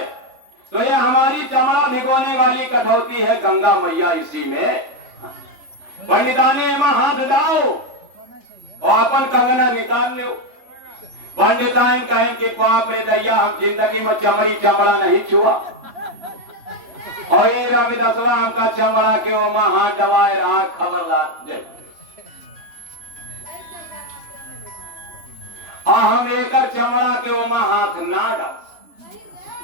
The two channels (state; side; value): late; left; 3.4 ms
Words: तो ये हमारी चमड़ा भिगोने वाली कठौती है गंगा मैया, इसी में पंडिताने में हाथ डाओ और अपन कंगना निकाल लो। पंडिताइन कहें कि बाप रे दैया हम जिंदगी में चमड़ा नहीं छुआ, और ये रविदासवा हमका चमड़ा के ओमा हाथ दबाए रहा खबर ला। और हम एकर चमड़ा के ओमा हाथ ना डाल।